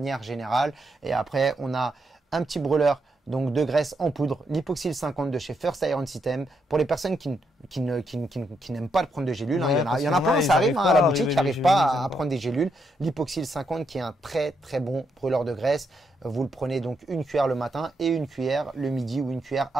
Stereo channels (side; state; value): both; normal; correlation 0.79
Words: générale. Et après, on a un petit brûleur donc de graisse en poudre, l'Hypoxyl 50 de chez First Iron System. Pour les personnes qui n'aiment pas de prendre de gélules, il y en a plein, ça arrive à la boutique, qui n'arrivent pas à prendre des gélules. L'Hypoxyl 50 qui est un très très bon brûleur de graisse. Vous le prenez donc une cuillère le matin et une cuillère le midi ou une cuillère